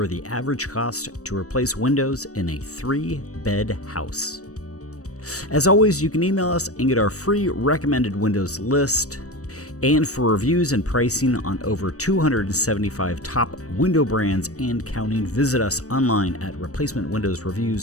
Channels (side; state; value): right; late; 0.66 ms